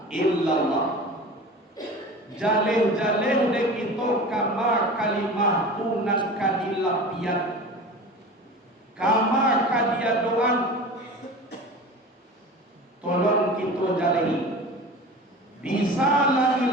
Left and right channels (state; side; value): normal; both; correlation 0.35